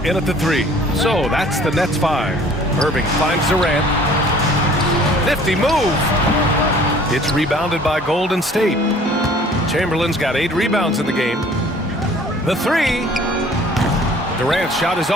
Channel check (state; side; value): normal; both; correlation 0.52